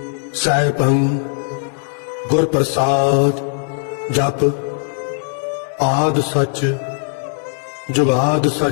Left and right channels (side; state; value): right; silent; digital silence